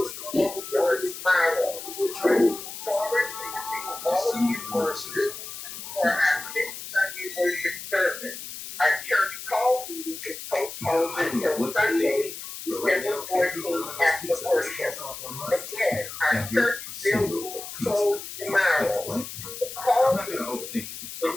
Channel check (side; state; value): left; noise; hiss, 10 dB below the sound